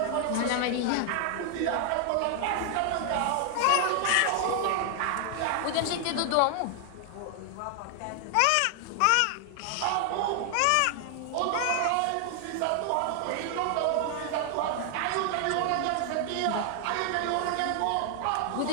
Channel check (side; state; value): both; different; correlation 0.00